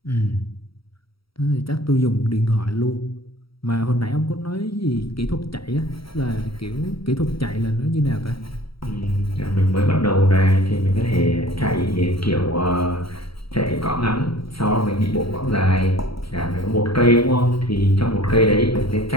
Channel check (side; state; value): right; late; 0.75 ms